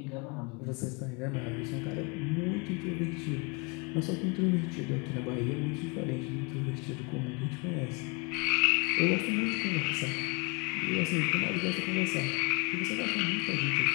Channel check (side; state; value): right; quieter; 27.6 dB